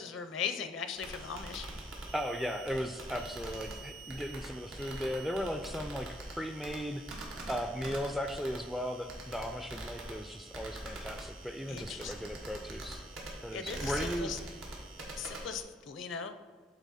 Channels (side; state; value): both; normal; correlation 0.71